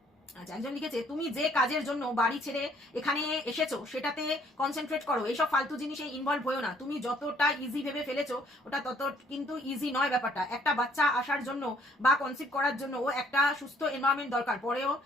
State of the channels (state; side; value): normal; both; correlation 0.63